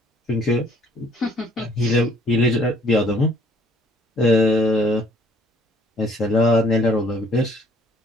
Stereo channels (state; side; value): normal; both; correlation 0.61